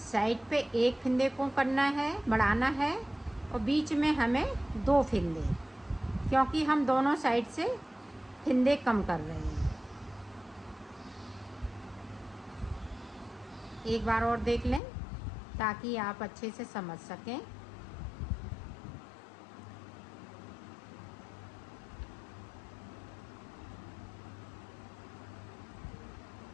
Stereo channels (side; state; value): right; drops out; at 14.8 s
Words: साइड पे 1 फिंदे को करना है, बढ़ाना है, और बीच में हमें 2 फिंदे, क्योंकि हम दोनों साइड से फिंदे कम कर रहे हैं। एक बार और देख लें ताकि आप अच्छे से समझ सकें।